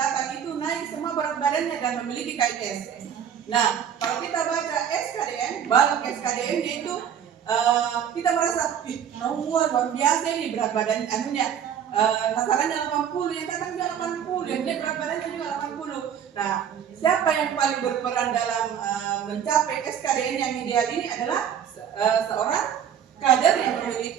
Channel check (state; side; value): quieter; left; 8.8 dB